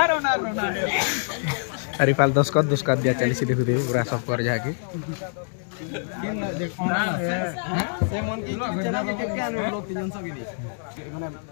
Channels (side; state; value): right; silent; digital silence